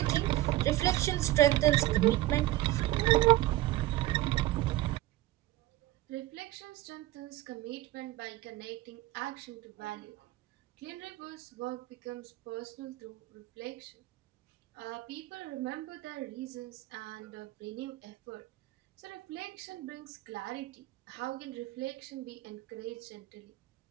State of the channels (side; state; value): left; quieter; 16.6 dB